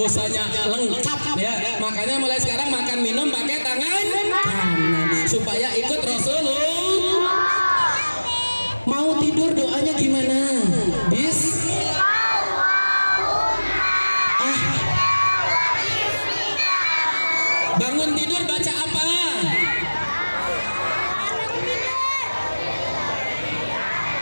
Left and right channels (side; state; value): both; inverted; correlation -1.00